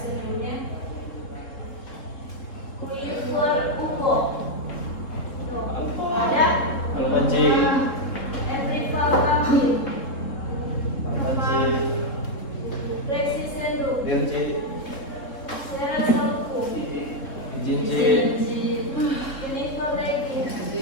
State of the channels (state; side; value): late; right; 3.5 ms